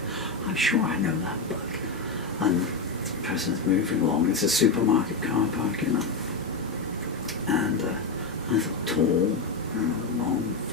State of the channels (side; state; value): right; quieter; 4.1 dB